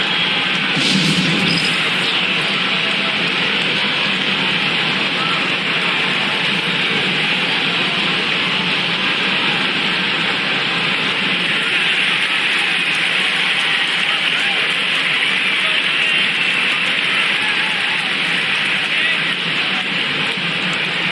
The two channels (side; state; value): both; identical; correlation 1.00